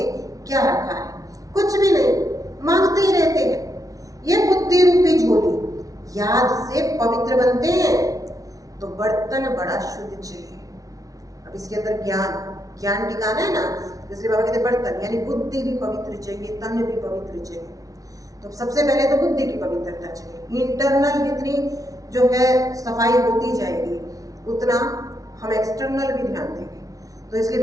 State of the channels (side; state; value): left; late; 0.17 ms